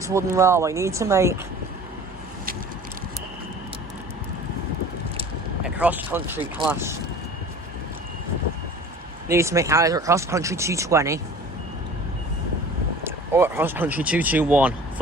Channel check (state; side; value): normal; both; correlation 0.43